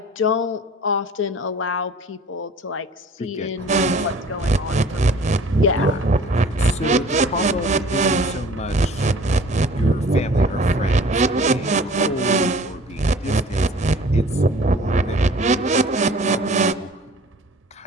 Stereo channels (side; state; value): both; normal; correlation 0.48